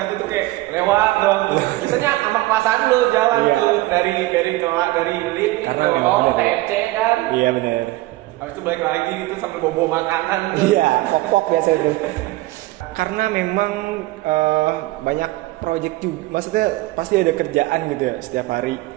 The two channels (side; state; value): left; quieter; 18.8 dB